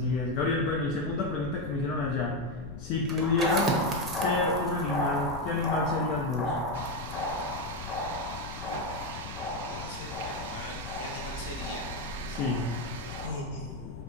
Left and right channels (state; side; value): noise; left; rumble, 10 dB below the sound